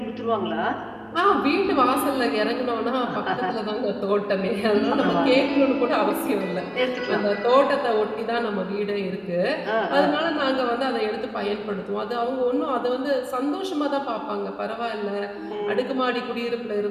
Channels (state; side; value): identical; both; correlation 1.00